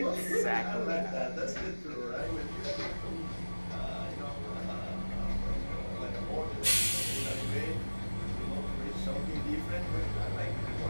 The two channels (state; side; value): inverted; both; correlation -1.00